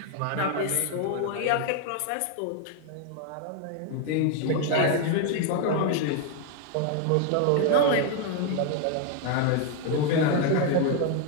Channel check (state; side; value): different; both; correlation 0.01